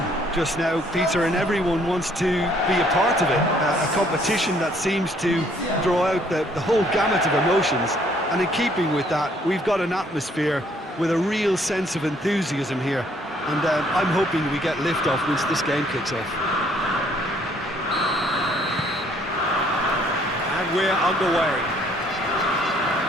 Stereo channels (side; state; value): both; normal; correlation 0.64